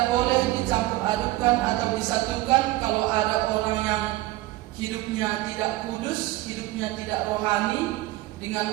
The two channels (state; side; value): quieter; left; 18.0 dB